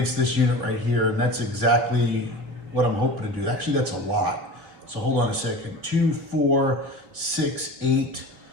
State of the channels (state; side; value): late; left; 3.2 ms